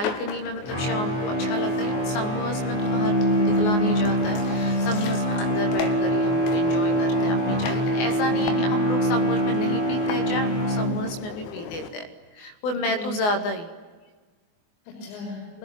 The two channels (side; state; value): right; late; 24 ms